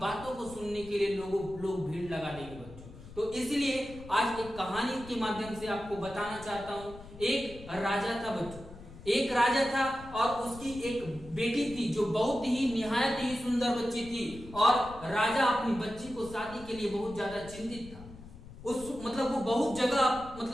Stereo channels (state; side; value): noise; left; rumble, 16 dB below the sound